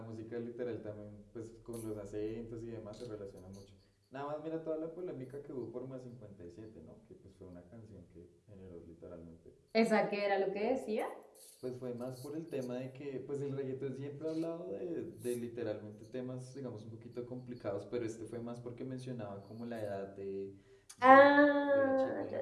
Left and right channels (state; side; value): identical; both; correlation 1.00